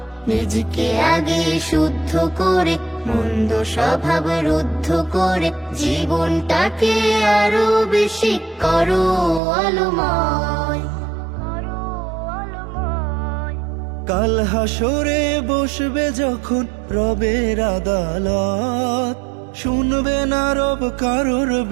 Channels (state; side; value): drops out; left; at 9.4 s